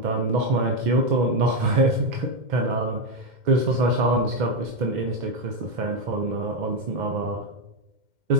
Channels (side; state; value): left; late; 2.1 ms